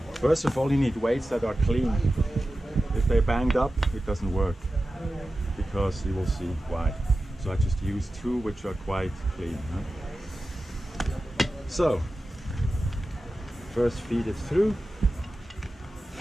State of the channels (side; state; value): both; normal; correlation 0.94